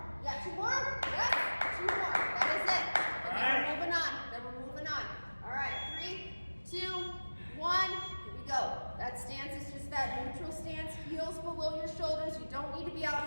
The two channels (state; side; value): inverted; both; correlation -1.00